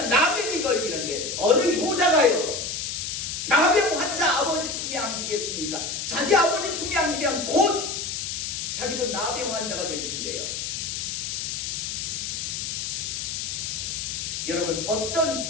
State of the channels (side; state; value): left; noise; hiss, 3 dB below the sound